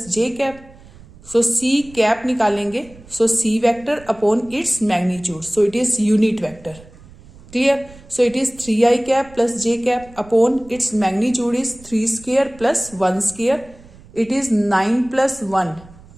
j cap. So c cap निकालेंगे so c vector upon its magnitude so it is unit vector. Clear? So it is 3i cap plus j cap upon its magnitude is 3 square plus 1 square it is 9 plus 1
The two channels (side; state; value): right; noise; rumble, 22 dB below the sound